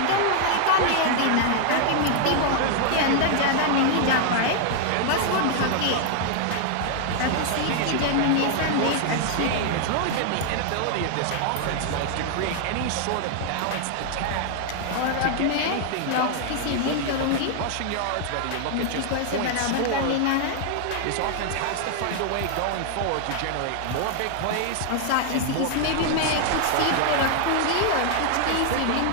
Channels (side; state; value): both; different; correlation 0.00